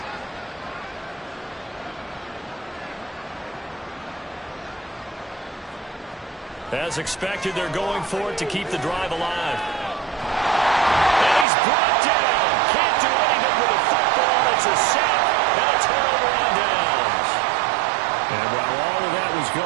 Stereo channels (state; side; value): drops out; left; at 11.5 s